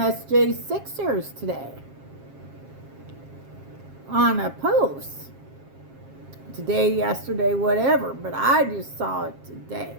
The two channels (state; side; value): late; left; 7.4 ms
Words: J6ers today on a post. Today, yesterday, whatever, but I just saw it today.